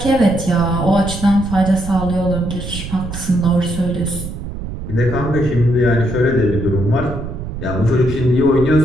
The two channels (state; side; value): noise; right; rumble, 8 dB below the sound